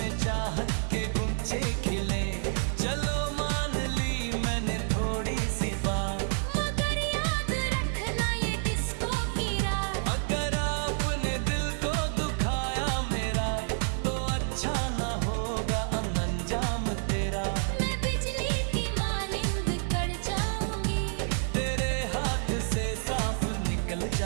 चाहत के गुंचे खिले। चलो मान ली मैंने थोड़ी सी बात, मगर याद रखना ये डिस्को की रात। अगर आपने दिल को दुखाया मेरा, तो अच्छा ना होगा अंजाम तेरा। मैं बिजली की मानिंद कड़ जाऊंगी, तेरे हाथ से साफ निकल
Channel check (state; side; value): silent; left; digital silence